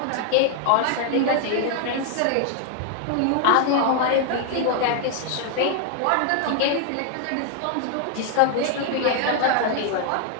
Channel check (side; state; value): both; different; correlation 0.00